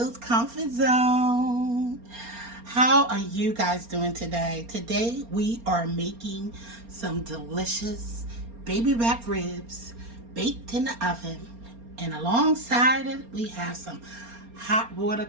Comfort Zone. How are you guys doing today? Today we are making some delicious baby back ribs baked in the oven. And alongside it, we have some hot water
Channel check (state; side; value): late; left; 4.3 ms